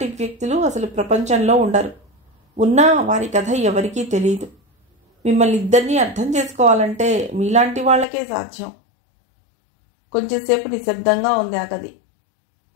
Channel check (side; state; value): right; drops out; at 8.1 s